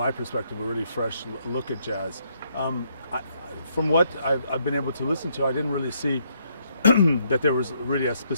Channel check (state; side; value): inverted; both; correlation -0.72